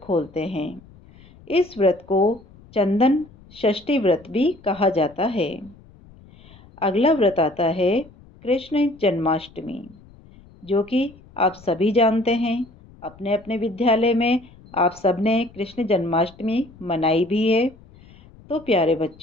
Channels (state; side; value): noise; left; rumble, 24 dB below the sound